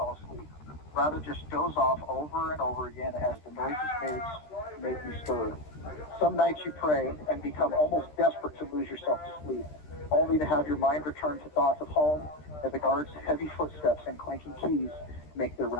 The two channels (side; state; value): right; late; 13 ms